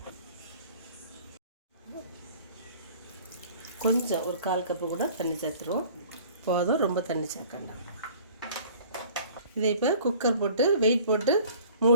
கொஞ்சம் ஒரு 1/4 கப்பு கூட தண்ணி சேர்த்துருவோம். போதும், ரொம்ப தண்ணி சேர்க்க வேண்டாம். இதை இப்போ குக்கர் போட்டு வெயிட் போட்டு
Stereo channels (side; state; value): both; inverted; correlation -0.50